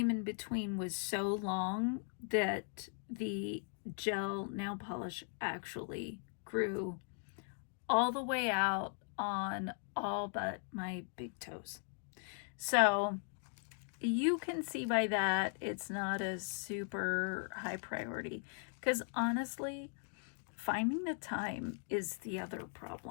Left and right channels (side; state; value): right; silent; 52 dB below the other